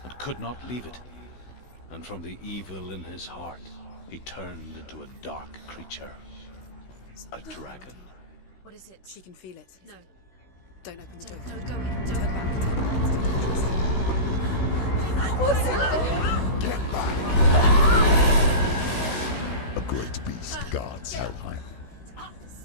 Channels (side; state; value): right; late; 16 ms